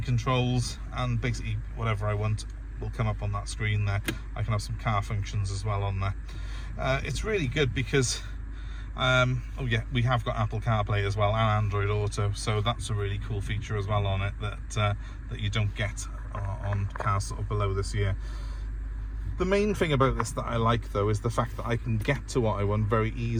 controls, and basically whatever I want will come up on that screen there. I can have some car functions as well on there. It's really good because oh yeah, we have got Apple Carplay as well and Android Auto, so that's a really cool feature as well on it that you don't get on cars sort of below this year. The main thing about this that I like though is the fact that I can get to what I want very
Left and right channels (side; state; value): both; identical; correlation 1.00